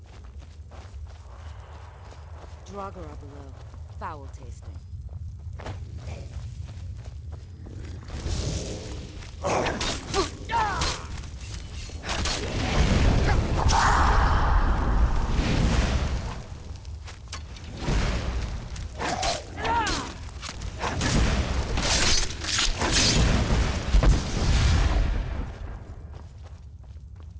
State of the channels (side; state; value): both; identical; correlation 1.00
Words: Draugr are below. Foul tasting.